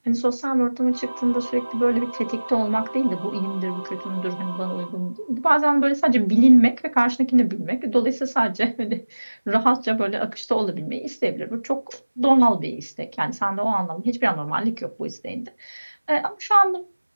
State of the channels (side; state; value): both; inverted; correlation -1.00